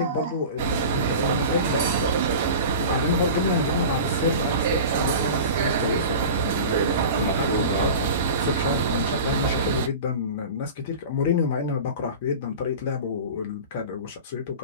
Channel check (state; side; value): inverted; both; correlation -0.34